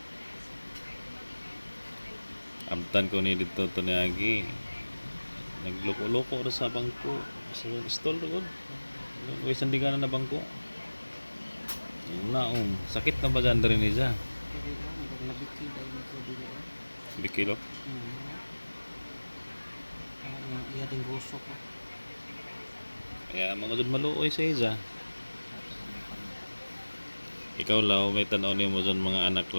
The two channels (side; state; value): both; inverted; correlation -1.00